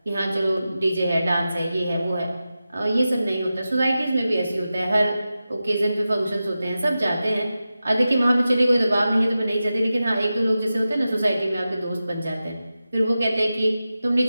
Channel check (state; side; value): inverted; both; correlation -0.93